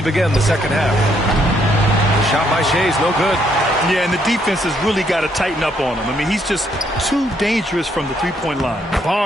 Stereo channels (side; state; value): both; normal; correlation 0.71